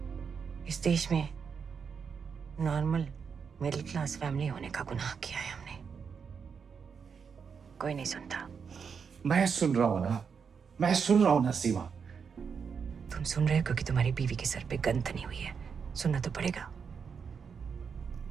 इस देश में नॉर्मल मिडिल क्लास फैमिली होने का गुनाह किया है हमने। कोई नहीं सुनता। मैं सुन रहा हूं ना, मैं सुन रहा हूं ना सीमा। तुम सुन रहे हो क्योंकि तुम्हारी बीवी के सर पे गन तनी हुई है। सुनना तो पड़ेगा।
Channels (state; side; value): quieter; left; 6.3 dB